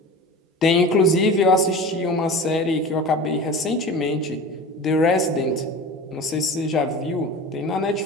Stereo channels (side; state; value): both; normal; correlation 0.34